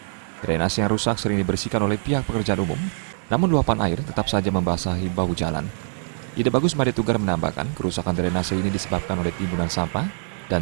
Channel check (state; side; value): silent; left; 63 dB below the other